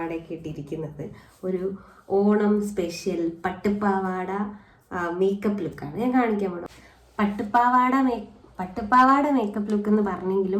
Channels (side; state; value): both; identical; correlation 1.00